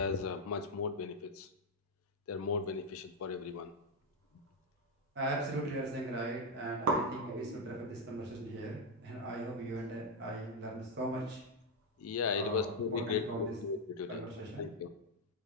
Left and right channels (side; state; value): both; normal; correlation 0.03